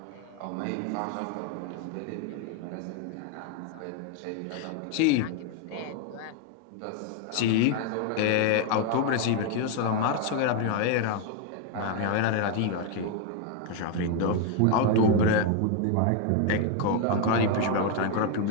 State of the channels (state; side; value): different; both; correlation 0.01